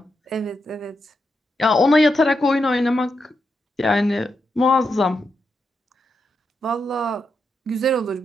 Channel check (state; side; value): normal; both; correlation 0.84